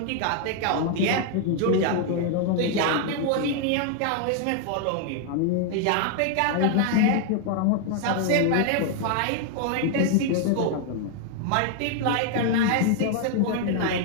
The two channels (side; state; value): both; different; correlation 0.00